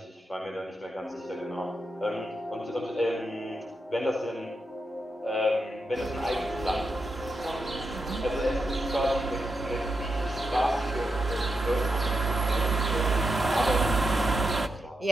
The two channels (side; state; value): both; normal; correlation 0.86